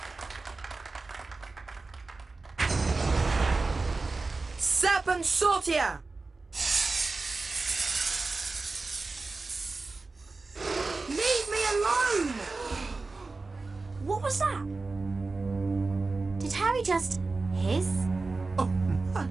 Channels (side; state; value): left; quieter; 3.7 dB